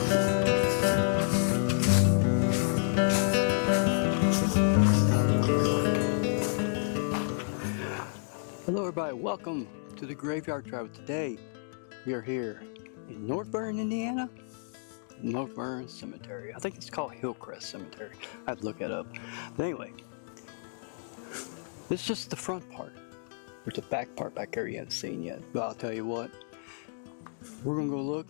Hello everybody, welcome to the Graveyard Travel. Today we are here in North Vernon, Indiana. North Vernon Cemetery. I think it's called Hillcrest Cemetery. I have to look that up. But anyway, this is just the front part. There's a back part back there you haven't seen yet. But I'll tell you what, we're going to go look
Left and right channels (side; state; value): right; silent; digital silence